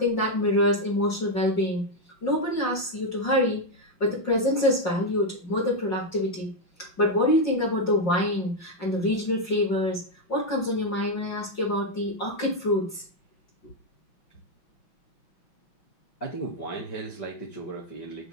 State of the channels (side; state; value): right; late; 5.6 ms